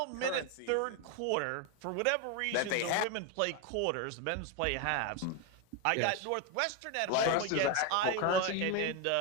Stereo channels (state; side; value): different; both; correlation 0.02